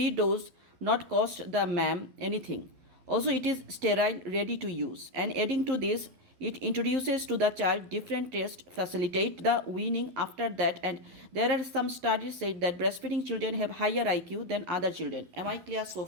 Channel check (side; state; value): left; late; 11 ms